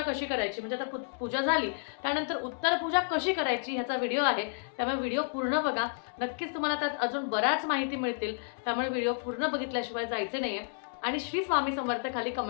करायची, म्हणजे आता पूजा झाली त्यानंतर उत्तर पूजा कशी करायची ह्याचा व्हिडिओ आहे. त्यामुळे व्हिडिओ पूर्ण बघा, नक्कीच तुम्हाला त्यात अजून बऱ्याच माहिती मिळतील. त्यामुळे व्हिडिओ पूर्ण बघितल्याशिवाय जायचे नाही आहे आणि श्री स्वामी समर्थ खाली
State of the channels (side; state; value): right; silent; digital silence